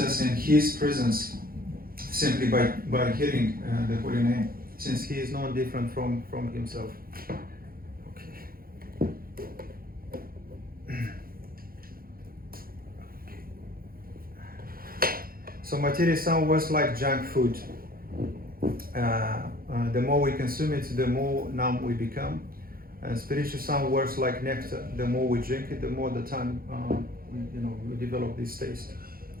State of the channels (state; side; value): late; left; 0.42 ms